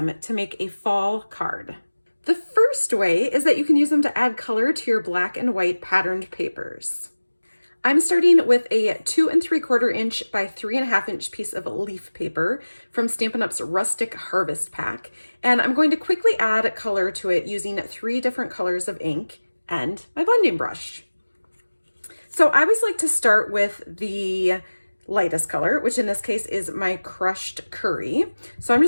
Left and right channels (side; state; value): both; inverted; correlation -1.00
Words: to make a fall card. The first way is that you can use them to add color to your black and white patterned papers. I'm starting with a 2 3/4 inch by 3.5 inch piece of leaf paper from Stampin' Up's Rustic Harvest Pack, and I'm going to quickly add color to it using 3 different colors of ink and my blending brush. So I always like to start with the lightest color, which in this case is my crushed curry. So I'm